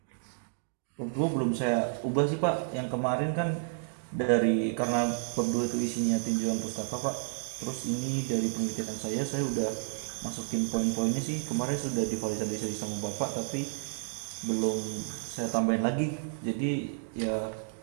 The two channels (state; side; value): silent; left; digital silence